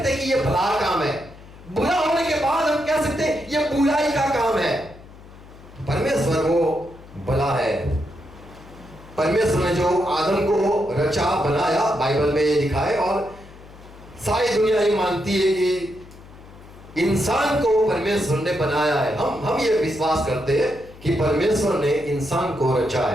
हैं कि ये भला काम है। बुरा होने के बाद हम कह सकते हैं ये बुराई का काम है। परमेश्वर वो भला है। परमेश्वर ने जो आदम को रचा, बनाया, बाइबल में ये लिखा है, और सारी दुनिया ये मानती है कि इंसान को परमेश्वर ने बनाया है। हम ये विश्वास करते हैं कि परमेश्वर ने इंसान को रचा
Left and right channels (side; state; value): left; noise; hum, 20 dB below the sound